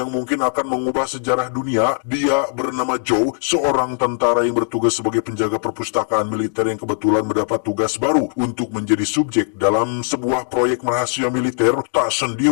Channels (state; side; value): silent; right; 66 dB below the other